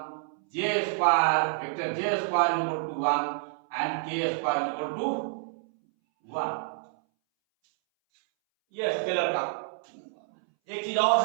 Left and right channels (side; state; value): left; silent; 59 dB below the other